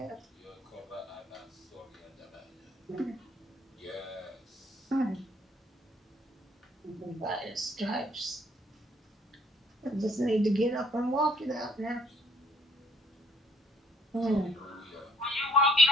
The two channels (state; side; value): normal; both; correlation 0.62